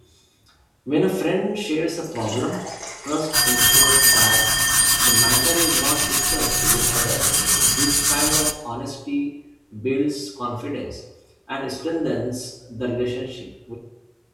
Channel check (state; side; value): identical; both; correlation 1.00